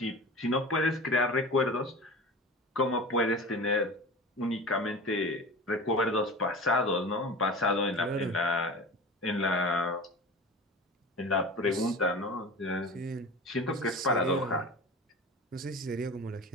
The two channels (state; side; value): normal; both; correlation 0.34